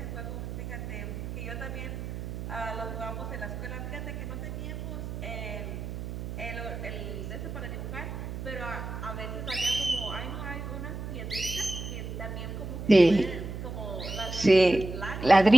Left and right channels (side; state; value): right; noise; hum, 6 dB below the sound